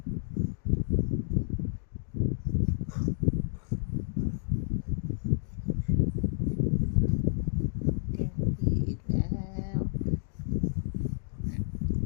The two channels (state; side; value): silent; right; digital silence